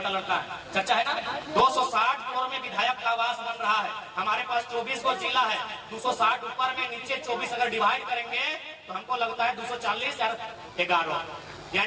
लड़का है चर्चा है ना, 260 करोड़ में विधायक का आवास बन रहा है। हमारे पास 24 को जिला है, 260 ऊपर में नीचे 24 अगर डिवाइड करेंगे तो हमको लगता है 240 या 11,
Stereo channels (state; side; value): identical; both; correlation 1.00